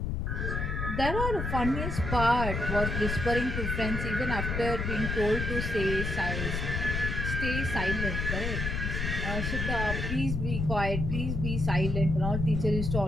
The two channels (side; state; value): left; noise; rumble, 2 dB below the sound